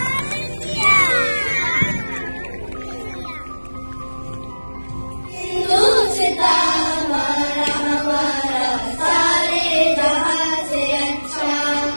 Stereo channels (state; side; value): inverted; both; correlation -1.00